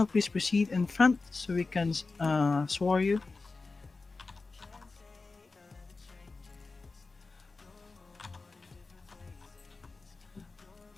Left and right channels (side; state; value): right; quieter; 3.9 dB